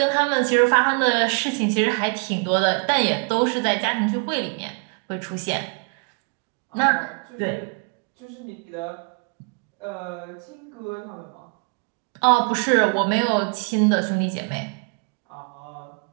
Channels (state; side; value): quieter; left; 36.8 dB